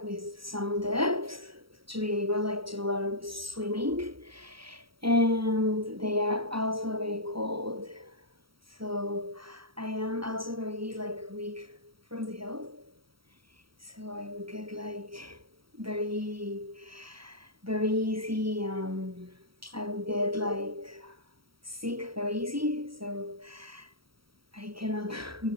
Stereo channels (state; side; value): late; left; 0.75 ms